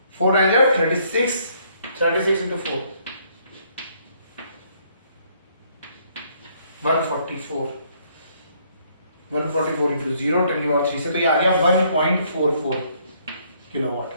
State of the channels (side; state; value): both; inverted; correlation -0.66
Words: 4 9 36, 36 इंटू 4 144, 144 इंटू 0 10⁻³ से, तो ये आ गया 1.44 किलोवाट,